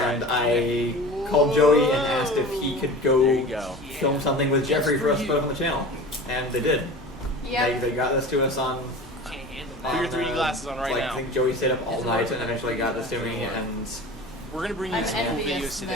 That's I called Joey and asked if he could There go you go. film something with Jeffrey for us to put up on the channel, and they did. Yep. They got this to us on. Put your 3D glasses on right like, now. I think Joey stayed up all night and eventually got this to me, and We're gonna bring you I'm some envious videos today.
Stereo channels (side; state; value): both; normal; correlation 0.37